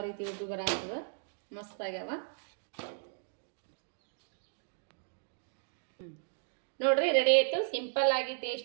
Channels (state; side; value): silent; left; digital silence